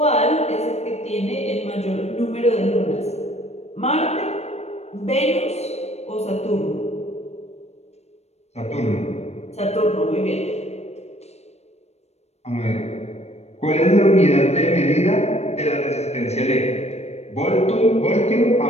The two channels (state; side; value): late; right; 0.31 ms